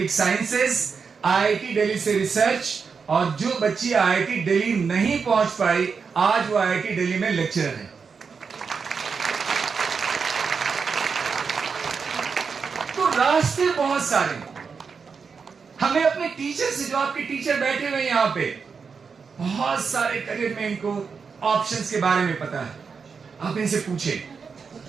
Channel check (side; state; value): left; quieter; 5.6 dB